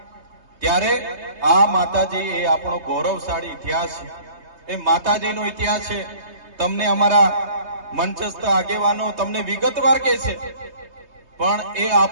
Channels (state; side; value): late; left; 3.2 ms